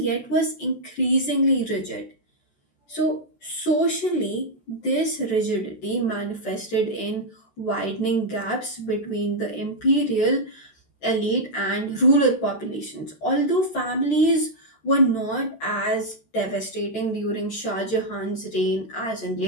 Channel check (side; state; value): right; late; 14 ms